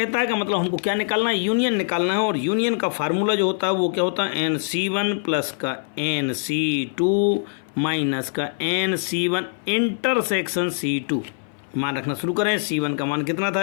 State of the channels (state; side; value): silent; right; 59 dB below the other